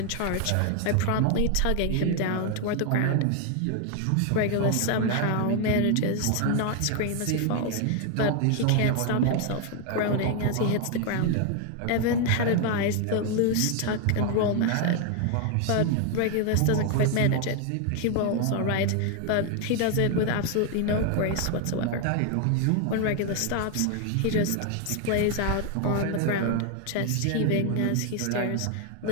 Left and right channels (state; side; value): different; both; correlation 0.00